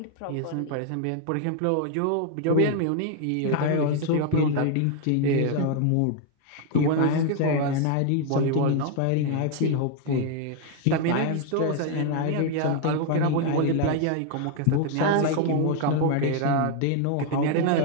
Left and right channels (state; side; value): different; both; correlation 0.00